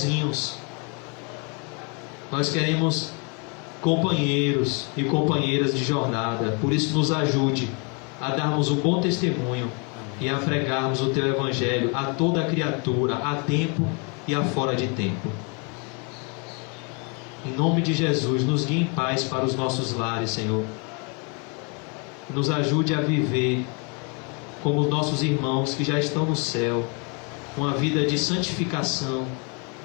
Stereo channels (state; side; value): quieter; right; 34.0 dB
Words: Nós queremos companheiros e companheiras de jornada. Por isso nos ajude a darmos um bom testemunho e a pregarmos o Teu Evangelho a toda criatura, a tempo e a fora de tempo. Em nome de Jesus, nos guie em paz para os nossos lares, Senhor. Nos ajude a viver como os nossos irmãos que já estão no céu, uma vida de santificação,